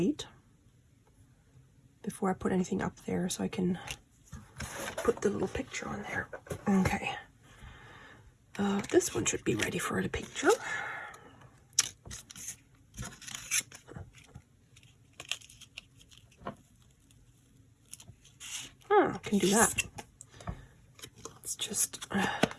before I put anything up there so I can put the little picture on there. Okay. This one should be ready for the picture. I can do that. Let's just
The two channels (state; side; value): identical; both; correlation 1.00